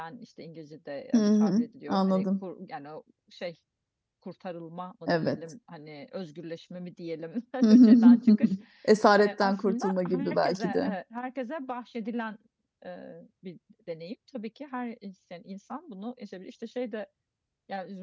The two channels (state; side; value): identical; both; correlation 1.00